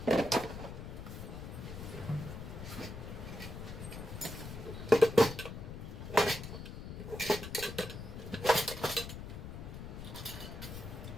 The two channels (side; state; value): left; noise; rumble, 9 dB below the sound